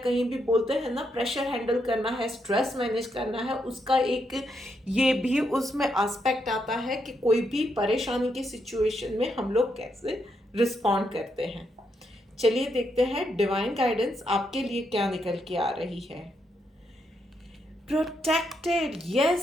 भी बोलते हैं ना, प्रेशर हैंडल करना है, स्ट्रेस मैनेज करना है, उसका एक ये भी उसमें एस्पेक्ट आता है कि कोई भी परेशानी की सिचुएशन में हम लोग कैसे रिस्पॉन्ड करते हैं। चलिए देखते हैं डिवाइन गाइडेंस आपके लिए क्या निकल के आ रही है। Protected,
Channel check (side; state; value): both; normal; correlation 0.79